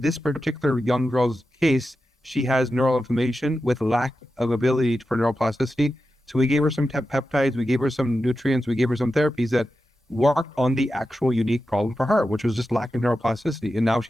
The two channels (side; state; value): both; normal; correlation 0.91